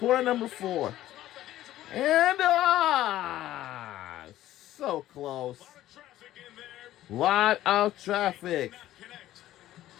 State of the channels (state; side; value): quieter; right; 14.0 dB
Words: number 4. And so close. Lot of traffic.